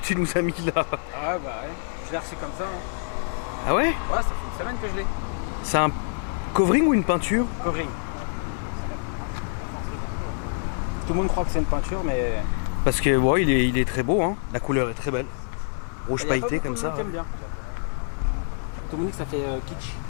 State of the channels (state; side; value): silent; right; digital silence